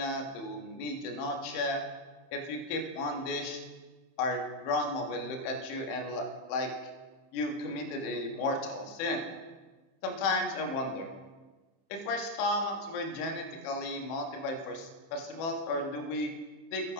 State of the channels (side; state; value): right; late; 31 ms